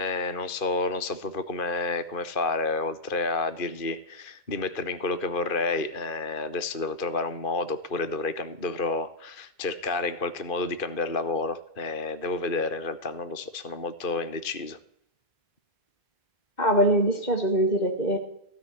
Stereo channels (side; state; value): right; late; 2.4 ms